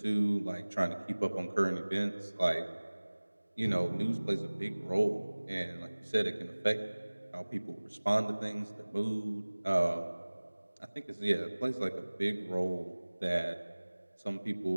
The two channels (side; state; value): both; inverted; correlation -1.00